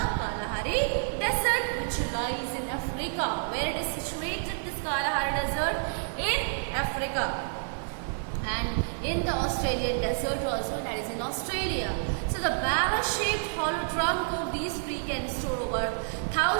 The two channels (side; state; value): left; silent; digital silence